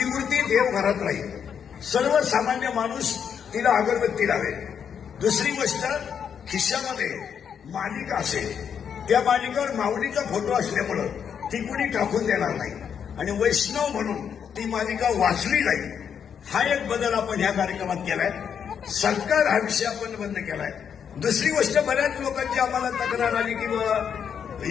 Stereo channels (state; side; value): quieter; right; 7.7 dB